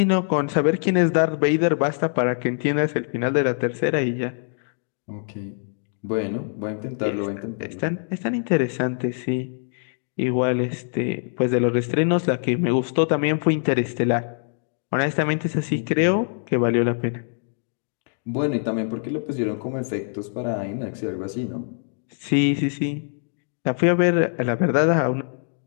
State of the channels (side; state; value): right; silent; digital silence